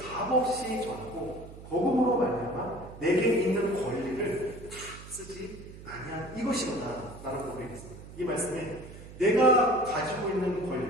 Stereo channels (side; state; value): right; noise; hum, 15 dB below the sound